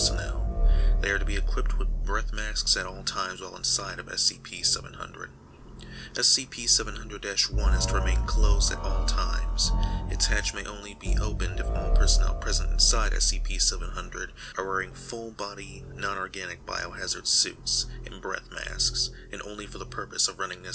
They are to be equipped with breath masks at all times while inside of SCP-700. SCP-700-1 is to remain closed at all times. Its hatch may only be opened if all personnel present inside SCP-700 are wearing full-body, non-organic biohazard suits and breath masks, and only for the purpose of running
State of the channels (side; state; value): both; identical; correlation 1.00